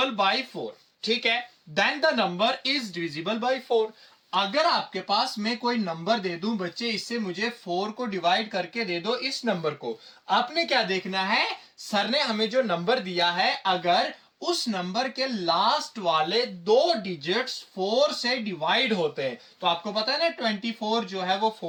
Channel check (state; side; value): identical; both; correlation 1.00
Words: बाय 4, ठीक है, then the number is divisible by 4। अगर आपके पास मैं कोई नंबर दे दूं बच्चे, इससे मुझे 4 को डिवाइड करके दे दो इस नंबर को, आपने क्या देखना है, सर ने हमें जो नंबर दिया है, अगर उस नंबर के लास्ट वाले 2 डिजिट्स 4 से डिवाइड होते हैं, तो आपको पता है ना 24 जो है वो